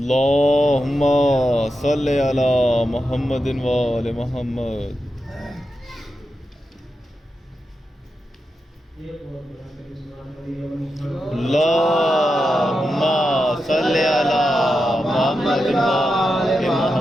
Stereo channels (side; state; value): both; normal; correlation 0.88